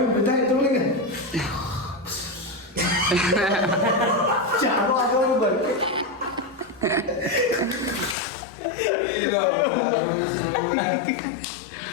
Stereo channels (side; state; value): right; drops out; at 8.2 s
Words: ತಗೊಳ್ಳಿಗೆ ಚಾಲು ಆಗೋರು ಬರ್ಕೆ